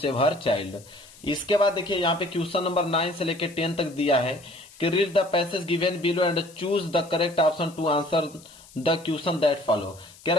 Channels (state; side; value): noise; left; hiss, 23 dB below the sound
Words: her child. इसके बाद देखिए यहाँ पे क्वेश्चन नंबर 9 से लेकर 10 तक दिया है कि read the passage given below and choose the correct option to answer the question that follow. कह रहा